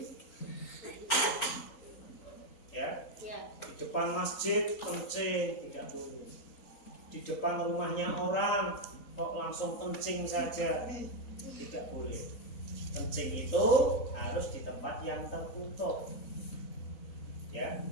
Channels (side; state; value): right; late; 3.9 ms